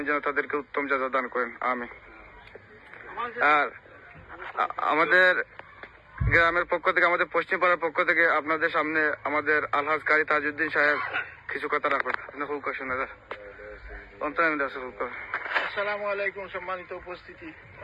যেন তাদেরকে উত্তম জাযা দান করেন, আমিন। আর আমাদের গ্রামের পক্ষ থেকে, আমাদের পশ্চিম পাড়ার পক্ষ থেকে আপনাদের সামনে আমাদের আলহাজ কারি তাজউদ্দিন সাহেব কিছু কথা রাখবেন। আপনি খুব শুনে আসসালামু আলাইকুম। সম্মানিত উপস্থিতি,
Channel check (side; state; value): both; identical; correlation 1.00